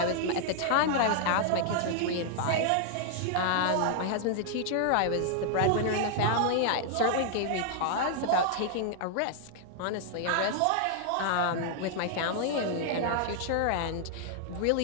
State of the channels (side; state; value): both; different; correlation -0.01